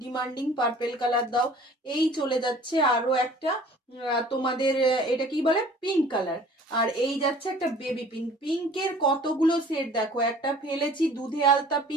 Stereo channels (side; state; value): both; normal; correlation 0.50